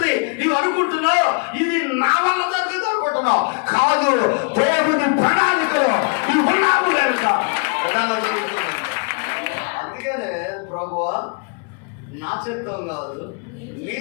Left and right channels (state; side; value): quieter; right; 36.6 dB